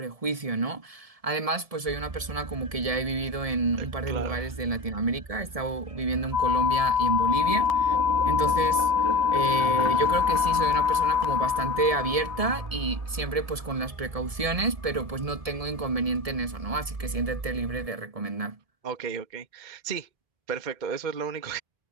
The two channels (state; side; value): late; left; 1.7 ms